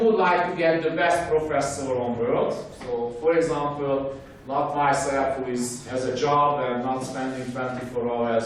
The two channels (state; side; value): identical; both; correlation 1.00